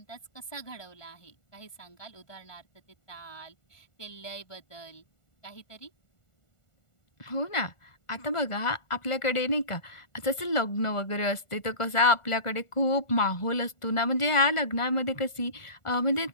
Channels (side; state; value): right; late; 1.4 ms